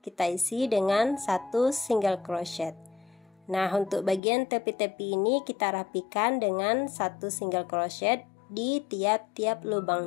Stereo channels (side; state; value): right; drops out; at 4.2 s